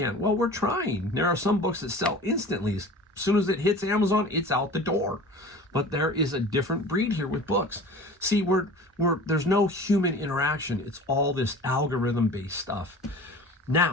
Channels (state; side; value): normal; both; correlation 0.40